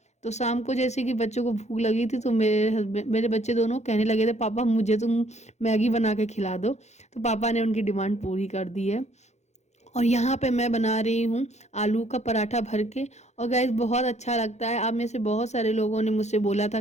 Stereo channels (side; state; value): right; late; 0.33 ms